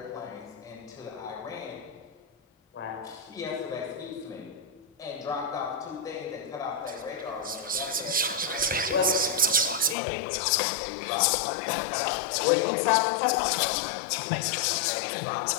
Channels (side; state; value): right; drops out; at 10.0 s